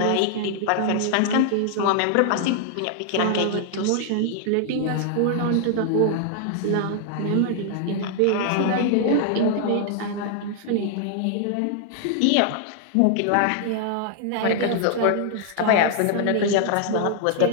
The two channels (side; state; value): both; different; correlation -0.01